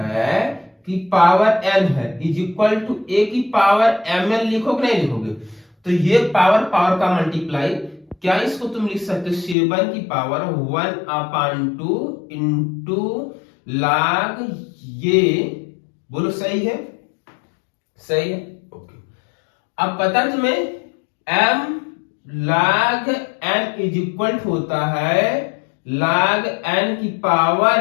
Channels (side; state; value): right; drops out; at 9.6 s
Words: की पावर n है, इज इक्वल टू a की पावर mn लिखोगे नहीं लिखोगे? तो ये पावर का मल्टीप्लाई, क्या इसको तुम लिख सकते हो 7 की पावर 1/2 इंटू लाग। ये बोलो सही है? सही है? ओके। अब पता है तुम्हें m log n is equal होता है log n की